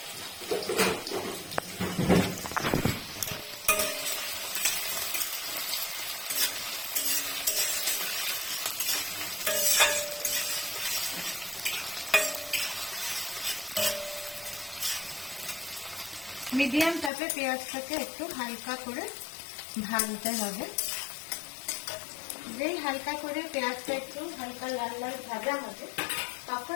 মিডিয়াম তাপে পেঁয়াজটাকে একটু হালকা করে ভাজতে হবে। যেই হালকা করে পেঁয়াজটা একটু হালকা লাল লাল ভাজা হবে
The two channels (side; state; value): right; drops out; at 17.1 s